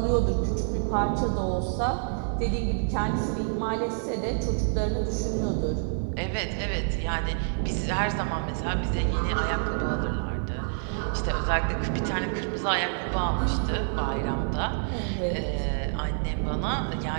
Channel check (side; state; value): left; silent; 60 dB below the other